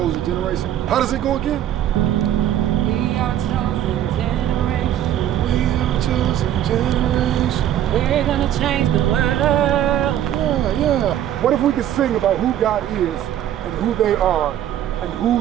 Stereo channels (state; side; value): quieter; left; 11.4 dB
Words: generation. How does it go again? We are chosen generation. We are a chosen generation. We're gonna change the world. Yeah. What if we could sing about who God is and who they are and